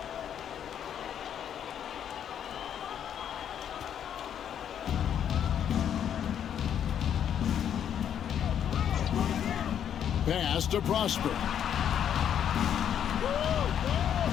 Pass to Prosper.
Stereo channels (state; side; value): quieter; right; 9.2 dB